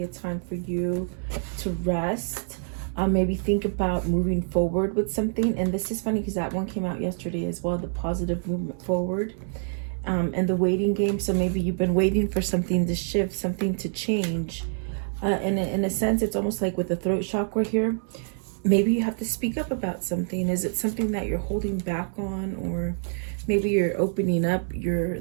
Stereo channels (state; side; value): silent; left; 61 dB below the other